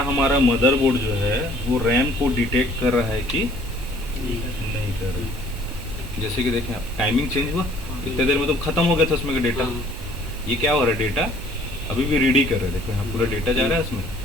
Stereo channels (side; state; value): both; normal; correlation 0.57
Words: हमारा मदरबोर्ड जो है वो रैम को डिटेक्ट कर रहा है कि नहीं कर रहा है। जैसे कि देखें टाइमिंग चेंज हुआ, इतने देर में तो ख़त्म हो गया था उसमें का डेटा, ये क्या हो रहा है, डेटा अभी भी रीड ही कर रहे हैं। देखो यहाँ पूरा डेटा जा रहा है उसमें,